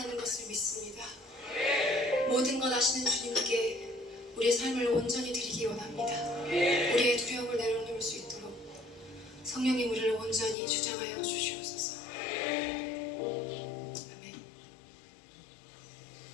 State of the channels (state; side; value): drops out; right; at 10.6 s